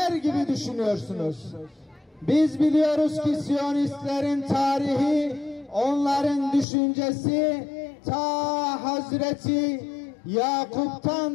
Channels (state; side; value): drops out; right; at 6.7 s